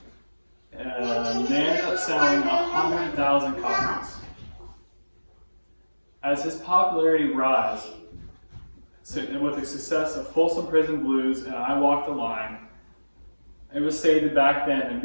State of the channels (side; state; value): both; inverted; correlation -1.00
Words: And they ended up selling 100,000 copies. As his popularity rose, with the success of Folsom Prison Blues and "I Walk the Line," it was stated back then that